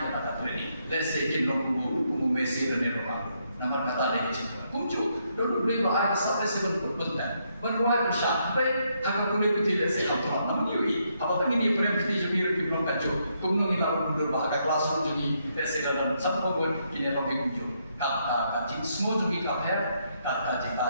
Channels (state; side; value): inverted; both; correlation -0.76